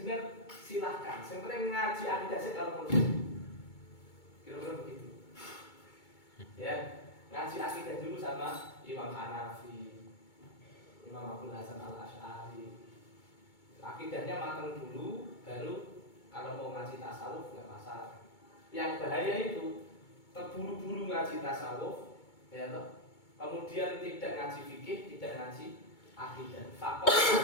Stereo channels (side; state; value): right; late; 2.2 ms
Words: silahkan. Sebenarnya ngaji akidah sih kalau perlu. Kira-kira begitu. Ya, ngaji akidah dulu sama Imam Hanafi, Imam Abdul Hasan Al-Asy'ari. Akidahnya matang dulu, baru kalau mau ngaji tasawuf nggak masalah. Yang bahaya itu terburu-buru ngaji tasawuf, ya toh. Kemudian tidak ngaji fikih, tidak ngaji akidah. Fakot